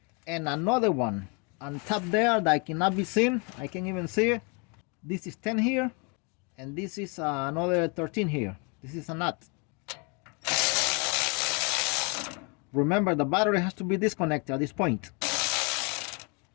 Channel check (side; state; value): right; quieter; 33.3 dB